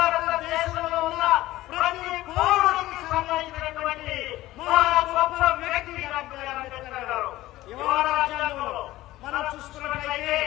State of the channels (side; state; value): right; quieter; 16.4 dB